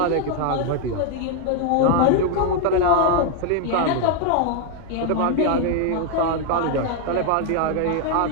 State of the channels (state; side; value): different; both; correlation 0.00